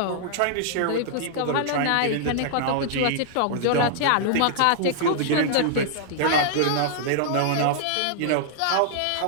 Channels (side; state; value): both; different; correlation -0.01